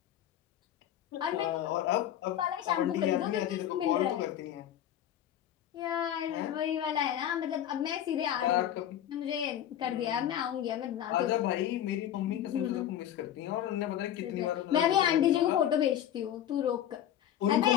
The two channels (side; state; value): right; quieter; 11.0 dB